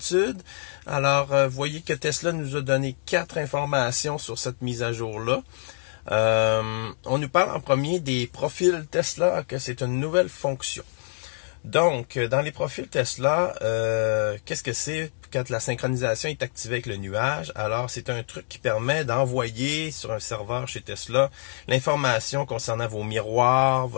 Alors, vous voyez que Tesla nous a donné 4 informations sur cette mise à jour-là. On nous parle en premier des profils Tesla, que c'est une nouvelle fonction. Donc, dans les profils Tesla, qu'est-ce que c'est quand la synchronisation est activée avec le nuage? Alors, c'est un truc qui permet d'envoyer sur un serveur chez Tesla l'information concernant vos miroirs,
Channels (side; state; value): right; silent; digital silence